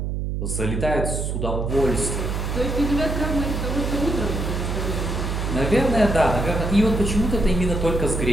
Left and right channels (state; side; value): noise; right; hum, 2 dB below the sound